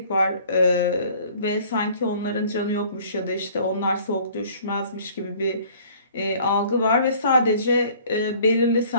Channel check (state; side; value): inverted; both; correlation -0.53